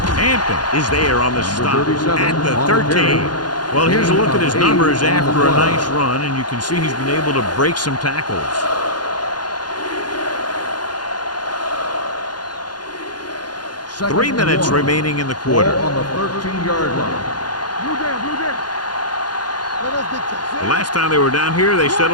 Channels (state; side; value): late; right; 0.70 ms